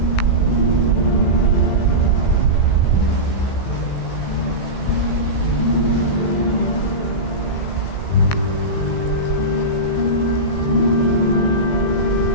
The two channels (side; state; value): right; late; 16 ms